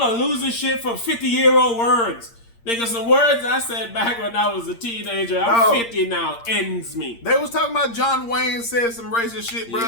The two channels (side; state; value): right; late; 8.7 ms